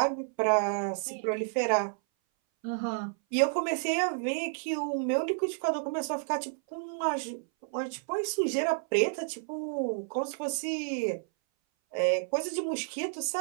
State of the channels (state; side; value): silent; left; 57 dB below the other